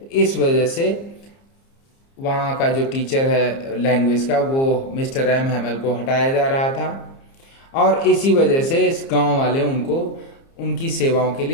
इस वजह से वहाँ का जो टीचर है लैंग्वेज का वो मिस्टर एम हेमल को हटाया जा रहा था, और इसी वजह से इस गांव वाले उनको उनकी सेवाओं के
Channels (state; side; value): late; right; 30 ms